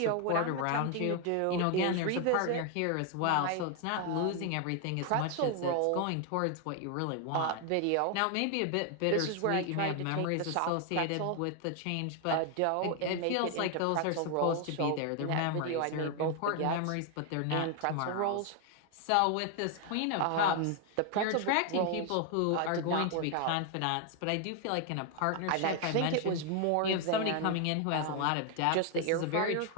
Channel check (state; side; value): different; both; correlation 0.00